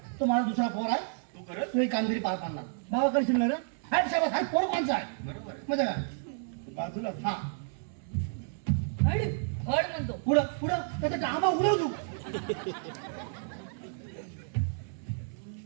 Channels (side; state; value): left; silent; 57 dB below the other